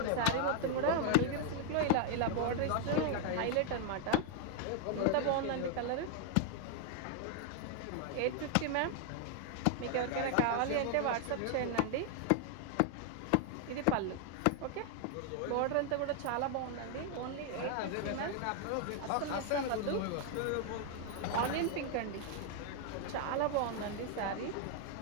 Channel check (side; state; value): both; different; correlation 0.00